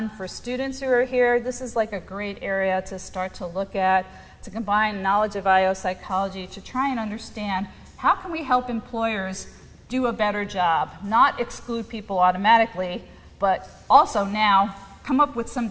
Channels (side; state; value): both; identical; correlation 1.00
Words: For students who are here, this is like a great area to start to look at, to combine knowledge of IO psychology to try and understand how can we help employers do a better job, not exclude people automatically, but also now come up with some